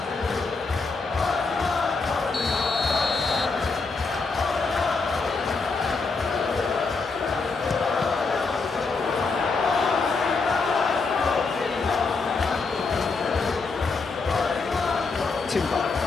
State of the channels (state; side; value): quieter; right; 4.3 dB